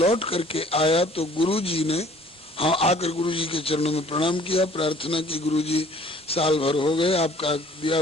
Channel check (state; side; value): normal; both; correlation 0.55